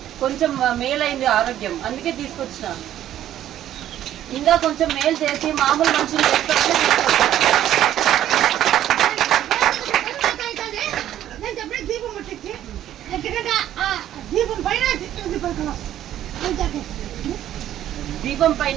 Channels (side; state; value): left; quieter; 11.9 dB